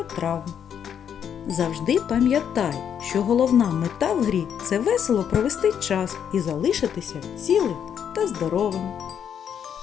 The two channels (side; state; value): right; quieter; 8.5 dB